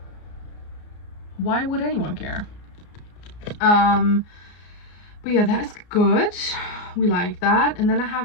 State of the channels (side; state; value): right; late; 34 ms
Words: Why would anyone care? But yeah, that's good. We like that. And then I